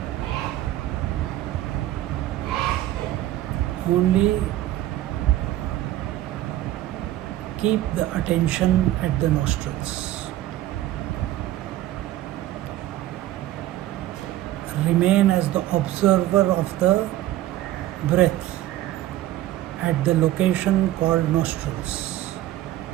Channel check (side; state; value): left; quieter; 14.1 dB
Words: Only keep the attention at the nostrils. Remain as the observer of the breath at the location called nostrils.